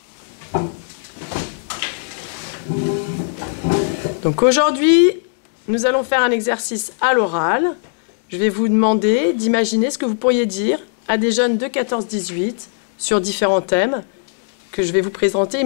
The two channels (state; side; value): silent; right; digital silence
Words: Donc aujourd'hui, nous allons faire un exercice à l'oral. Je vais vous demander d'imaginer ce que vous pourriez dire à des jeunes de 14-18 sur différents thèmes que je vais vous présenter